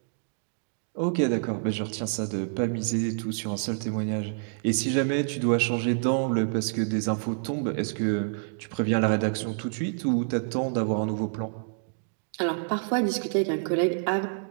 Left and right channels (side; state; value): left; silent; digital silence